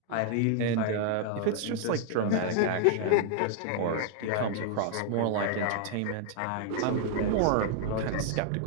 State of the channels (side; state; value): both; different; correlation 0.00